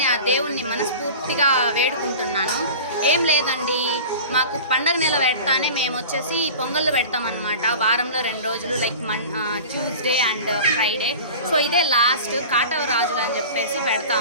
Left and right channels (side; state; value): both; inverted; correlation -0.37